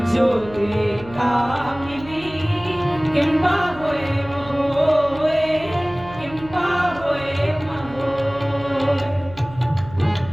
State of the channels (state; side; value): noise; right; hum, 17 dB below the sound